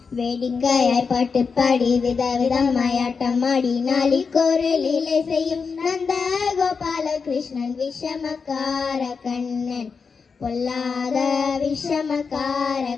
வேடிக்கையாய் பாட்டு பாடி விதவிதமாய் ஆட்டமாடி நாளிக்கொரு லீலை செய்யும் நந்த கோபாலகிருஷ்ணன் விஷமக்கார கண்ணன் பொல்லாத விஷமக்கார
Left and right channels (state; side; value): quieter; right; 5.3 dB